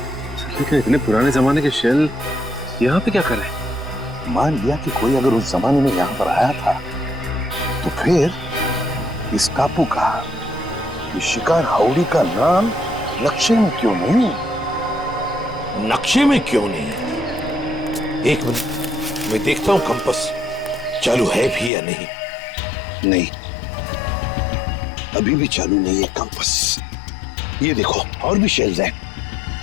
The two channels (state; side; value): drops out; right; at 21.7 s